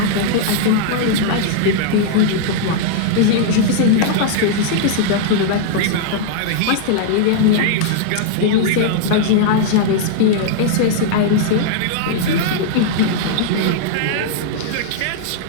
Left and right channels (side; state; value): both; different; correlation -0.01